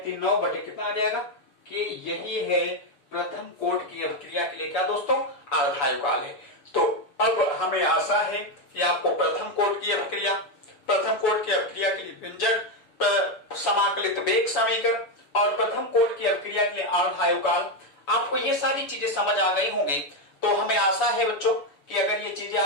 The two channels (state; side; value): late; right; 7.0 ms